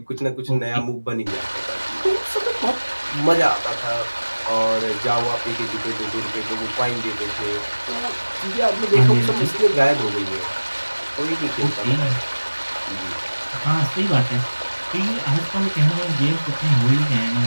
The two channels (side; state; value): both; inverted; correlation -1.00